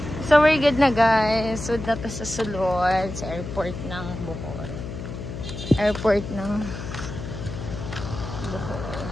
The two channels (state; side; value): noise; left; hum, 8 dB below the sound